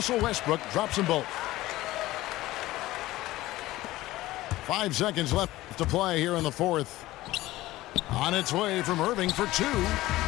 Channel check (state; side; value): quieter; right; 17.2 dB